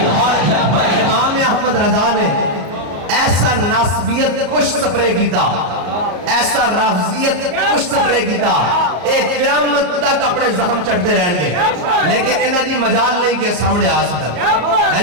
اور امام احمد رضا نے ایسا ناسبیت کچھ سپرے کیتا, ایسا رافضیت کچھ سپرے کیتا, ایک قیامت تک اپنے زخم چڑھتے رہن گے لیکن انہاں دی مجال نہیں کہ سامنے آ سکتا.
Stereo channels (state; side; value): late; left; 33 ms